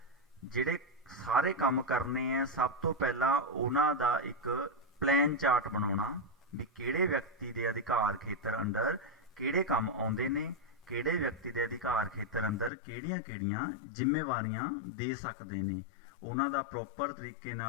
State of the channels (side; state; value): right; drops out; at 12.7 s